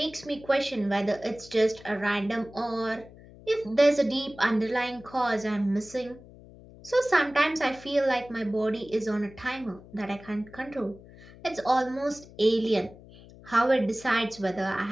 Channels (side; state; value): left; noise; hum, 20 dB below the sound